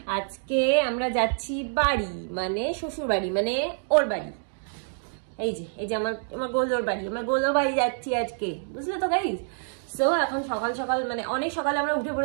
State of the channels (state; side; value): silent; left; digital silence